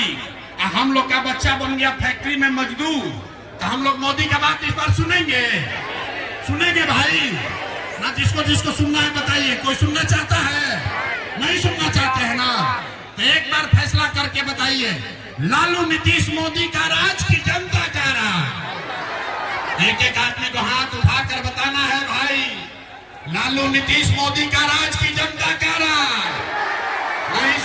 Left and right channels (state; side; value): identical; both; correlation 1.00